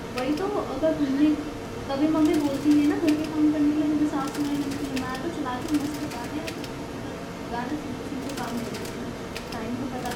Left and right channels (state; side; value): identical; both; correlation 1.00